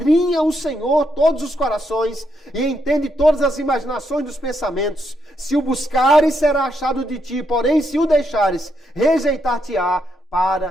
o Senhor todos os corações e entende todas as imaginações dos pensamentos. Se o buscares, será achado de ti, porém se o deixares, rejeitar-te-á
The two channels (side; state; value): both; normal; correlation 0.78